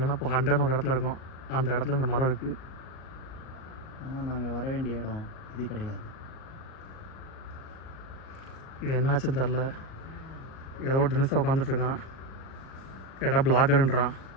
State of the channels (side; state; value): right; late; 38 ms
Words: இப்போ 100 ஒரு இடத்துல இருக்கும். அந்த இடத்துல இந்த மரம் இருக்குது. ஆனால் நாங்கள் வர வேண்டிய இடம் இது கிடையாது. இது என்னாச்சுன்னு தெரில. ஏதோ ஒரு டெனிஸாக உட்காந்துட்ருக்கான். கேட்டால் பிளாகருன்றான்.